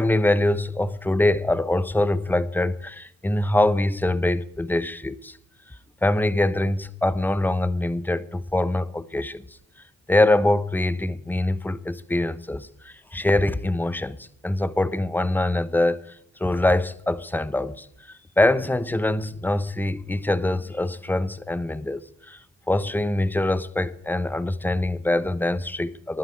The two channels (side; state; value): both; normal; correlation 0.91